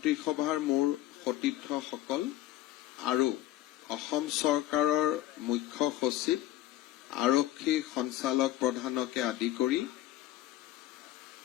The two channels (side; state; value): right; quieter; 14.6 dB